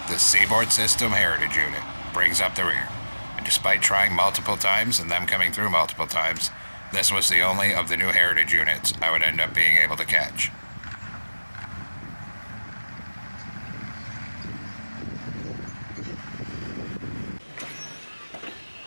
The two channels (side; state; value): both; inverted; correlation -1.00